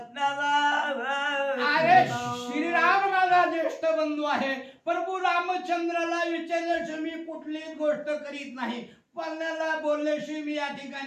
अरे श्रीराम माझा ज्येष्ठ बंधू आहे. प्रभू रामचंद्राला विचारल्याशिवाय मी कुठलीच गोष्ट करीत नाही. पल्ल्याला बोलल्याशिवाय मी या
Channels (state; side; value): identical; both; correlation 1.00